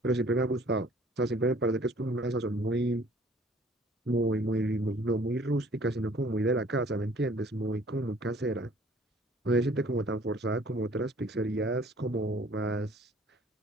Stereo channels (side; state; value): both; normal; correlation 0.55